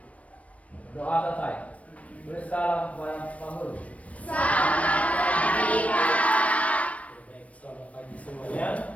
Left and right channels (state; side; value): late; right; 0.065 ms